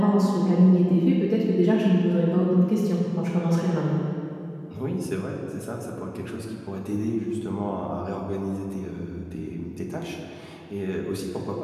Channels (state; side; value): identical; both; correlation 1.00